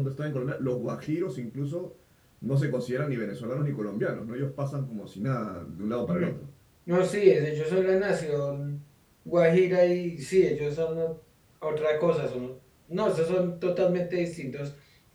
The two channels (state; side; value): identical; both; correlation 1.00